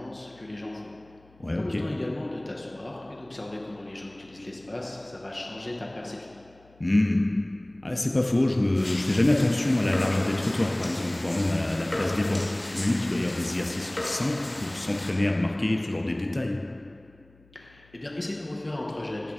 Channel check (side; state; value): left; noise; hum, 29 dB below the sound